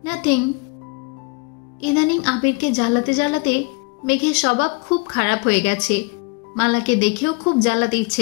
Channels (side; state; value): right; quieter; 28.8 dB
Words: নাথিং। ইদানিং আবিরকে জ্বালাতে জ্বালাতে মেঘের স্বভাব খুব খারাপ হয়ে গেছে। মালাকে দেখেও খুব জ্বালাতে